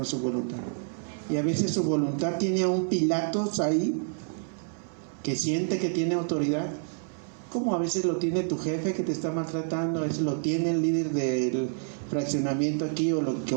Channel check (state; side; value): silent; left; 59 dB below the other